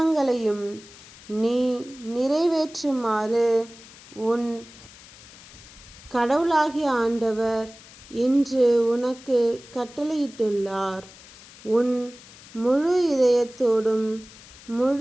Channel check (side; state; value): left; noise; hiss, 20 dB below the sound